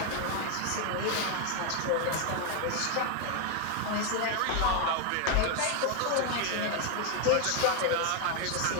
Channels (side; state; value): both; different; correlation 0.01